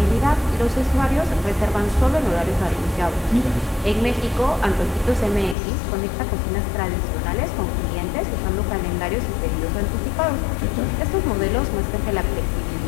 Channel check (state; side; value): drops out; right; at 5.6 s